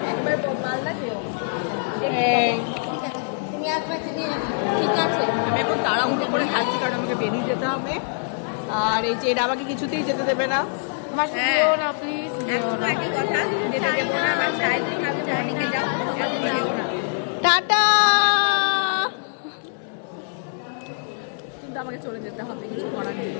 ঠিক আছে, আমি এখন তাড়াহুড়ো করে খাচ্ছি কারণ আমাকে বেরিয়ে যেতে হবে। আর এই যে এটা আমাকে কিছুতেই যেতে দেবে না। টাটা। কিন্তু আমাকে চলে যেতে হবে, কিছু করার নেই।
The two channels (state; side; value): silent; right; 63 dB below the other